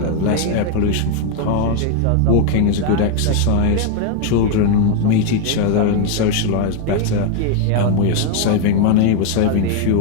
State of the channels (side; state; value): both; different; correlation 0.01